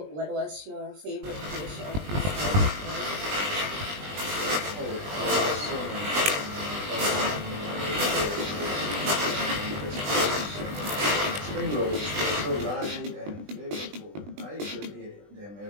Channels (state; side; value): late; left; 20 ms